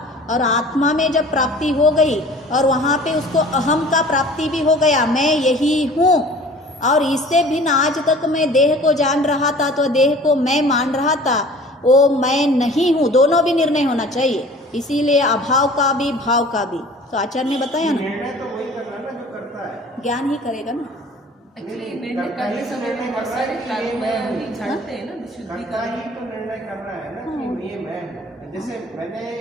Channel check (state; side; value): normal; both; correlation 0.46